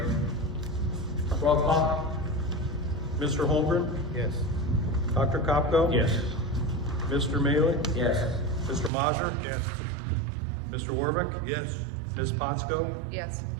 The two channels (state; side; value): drops out; left; at 8.9 s